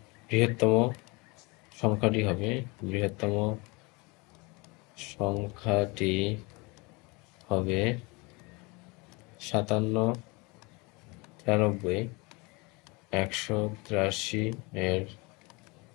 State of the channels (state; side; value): quieter; right; 26.9 dB